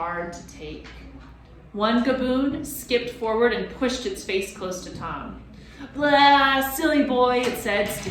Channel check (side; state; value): both; identical; correlation 1.00